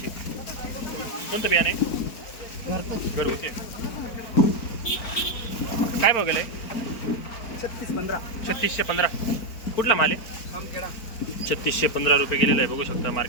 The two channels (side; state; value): right; late; 4.4 ms